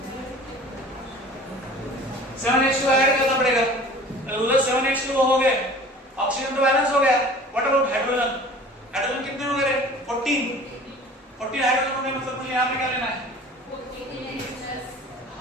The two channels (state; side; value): normal; both; correlation 0.45